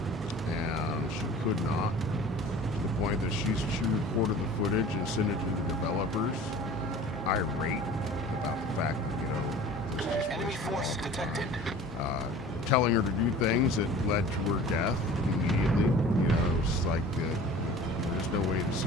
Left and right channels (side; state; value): both; normal; correlation 0.43